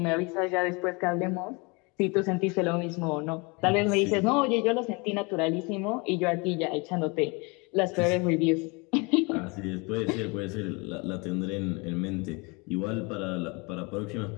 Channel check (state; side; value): quieter; right; 28.6 dB